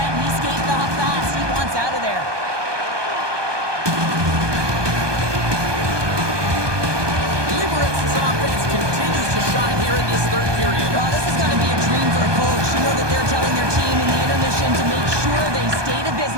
He's skating off fast. He wants out of there. Liberec's offense continues to shine here in this third period. Oh, this is going to be a dream for a coach. You know that they're telling their team in the intermission to make sure they stay to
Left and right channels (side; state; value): left; late; 1.2 ms